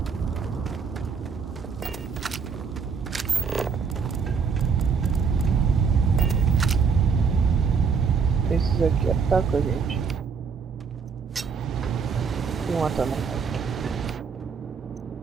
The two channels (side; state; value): left; quieter; 5.7 dB